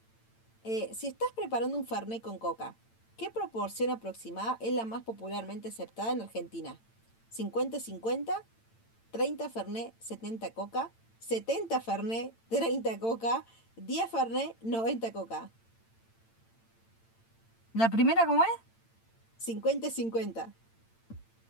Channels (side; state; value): right; late; 8.8 ms